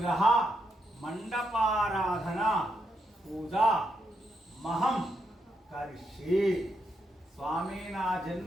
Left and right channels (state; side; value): normal; both; correlation 0.81